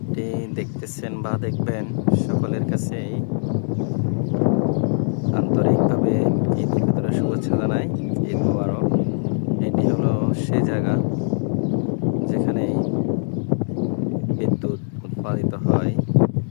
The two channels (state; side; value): silent; right; digital silence